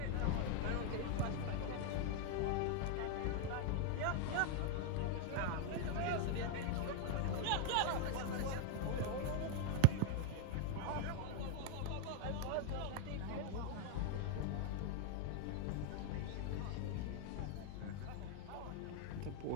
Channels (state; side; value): different; both; correlation 0.00